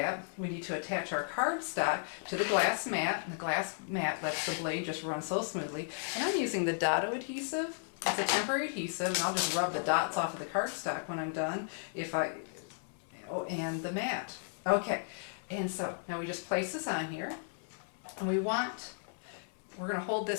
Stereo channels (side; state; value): right; silent; 55 dB below the other